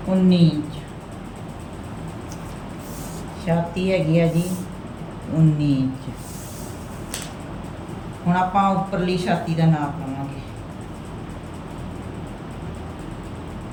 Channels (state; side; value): identical; both; correlation 1.00